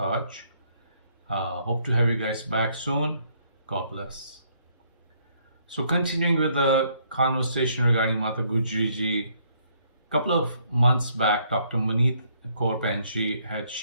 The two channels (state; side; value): inverted; both; correlation -0.68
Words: Hope to have you guys back soon. God bless. So continuing with the conversation regarding Mata Gujri Ji, a couple of months back, Dr. Maneet Kaur Panji had